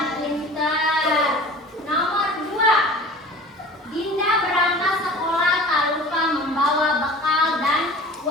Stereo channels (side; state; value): both; normal; correlation 0.41